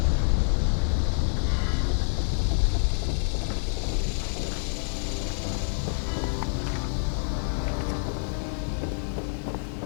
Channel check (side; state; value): right; silent; digital silence